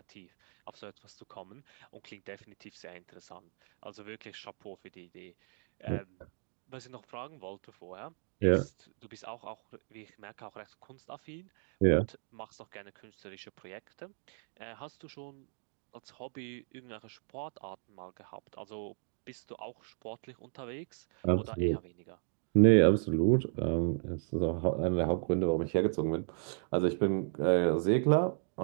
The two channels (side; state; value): left; silent; digital silence